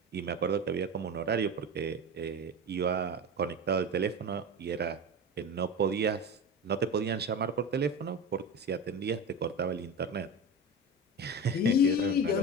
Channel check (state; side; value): normal; both; correlation 0.26